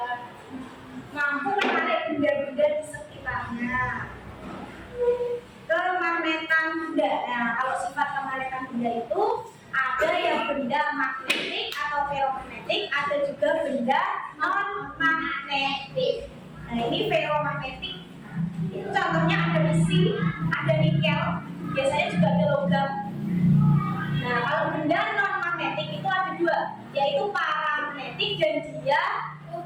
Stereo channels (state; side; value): identical; both; correlation 1.00